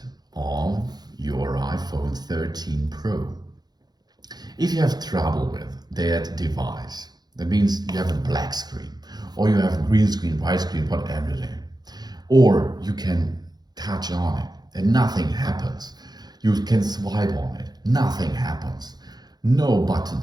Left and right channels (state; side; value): late; left; 0.19 ms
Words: on your iPhone 13 Pro. If you have trouble with that device, that means you have a black screen, or you have a green screen, white screen, whatever it is, or you can touch on it and nothing happens. You can swipe on it, nothing happens. No